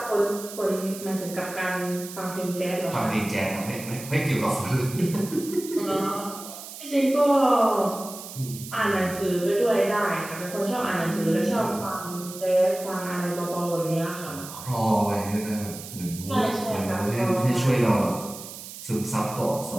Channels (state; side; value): noise; right; hiss, 12 dB below the sound